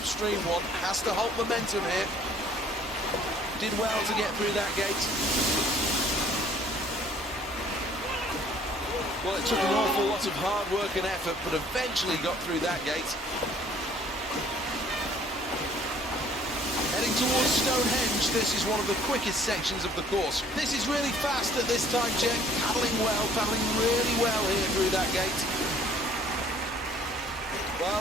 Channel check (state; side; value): normal; both; correlation 0.57